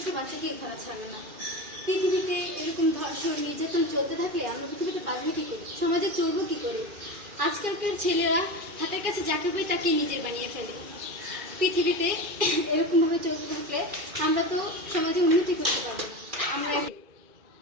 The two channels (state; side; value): late; left; 2.4 ms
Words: বাচ্চাকে ঘোরা ছাড়বে না। পৃথিবীতে এরকম ধর্ষণ নির্যাতন চলতে থাকলে আমরা পৃথিবীতে বাঁচবো কি করে, সমাজে চলবো কি করে? আজকালকার ছেলেরা হাতের কাছে যাকে পাই তাকেই নিজের বানিয়ে ফেলে। পৃথিবীতে এরকম ভাবে চলতে থাকলে আমরা তো সমাজে উন্নতি করতে পারবো না। আমরা